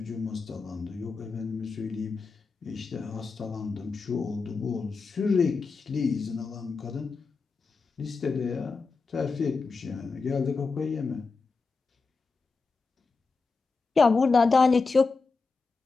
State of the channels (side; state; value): right; quieter; 4.4 dB